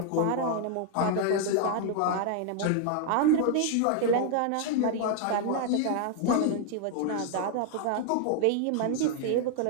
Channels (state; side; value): different; both; correlation 0.00